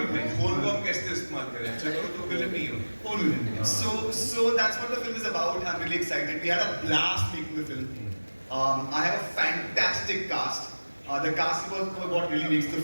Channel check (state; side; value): inverted; both; correlation -1.00